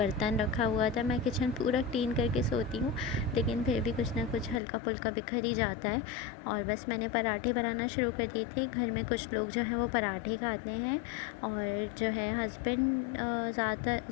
रखा हुआ था। मैं किचन पूरा क्लीन करके सोती हूँ, लेकिन फिर भी कुछ ना कुछ हल्का फुल्का बिखर ही जाता है। और बस मैंने पराठे बनाना शुरू कर दिए थे। घर में कुछ लोग जो हैं वो पराठे खाते हैं, और जो है हस्बैंड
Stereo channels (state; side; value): drops out; right; at 4.6 s